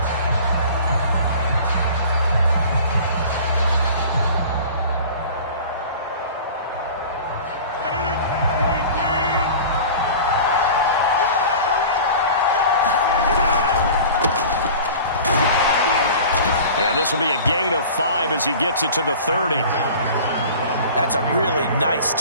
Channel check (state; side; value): inverted; both; correlation -0.40